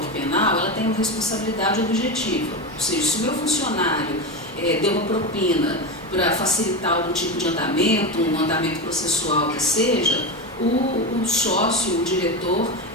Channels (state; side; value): normal; both; correlation 0.18